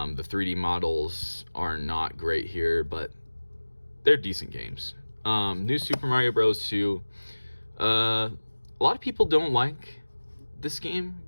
3D models are not great here, but they're decent games. New Super Mario Bros. 2. A lot of people don't like this game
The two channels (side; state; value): both; inverted; correlation -1.00